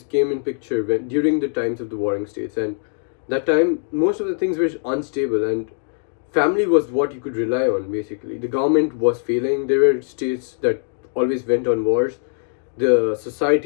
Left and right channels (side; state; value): right; silent; digital silence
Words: came in picture during the times of the warring states, and that time most of the things were unstable, and family was what you could rely on. Basically, the government was failing. There were states that always went on wars. The